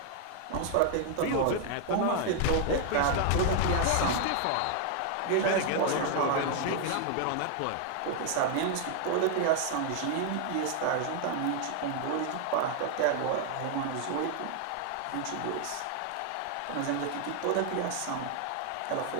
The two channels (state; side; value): different; both; correlation 0.00